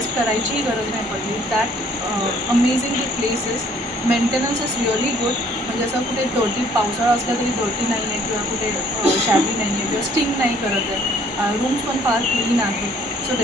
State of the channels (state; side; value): normal; both; correlation 0.60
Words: करायचीही गरज नाही पडली. That amazing the places. Maintenance is really good. म्हणजे असं कुठे डर्टी पावसाळा असला तरी डर्टी नाही आहे किंवा कुठे शॅबी नाही आहे किंवा स्टिंग नाही करत आहे. रूम्स पण फार क्लीन आहे. So